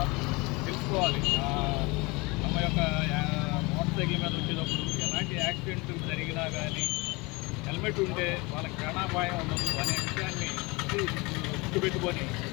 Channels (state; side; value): quieter; right; 25.6 dB